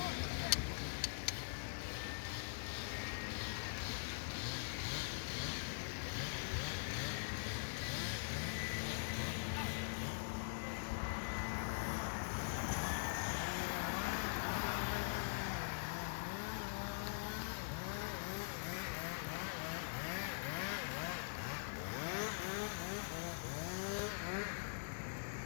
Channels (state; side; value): silent; right; digital silence